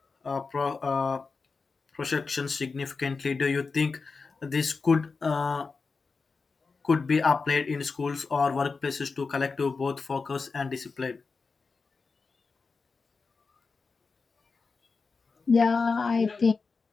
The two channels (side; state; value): right; quieter; 4.5 dB